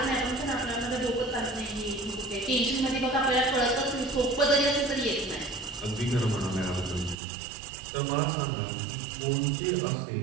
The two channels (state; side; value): drops out; left; at 7.2 s